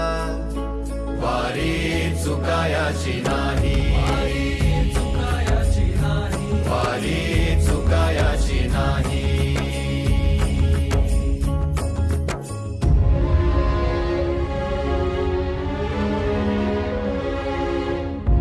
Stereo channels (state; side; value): identical; both; correlation 1.00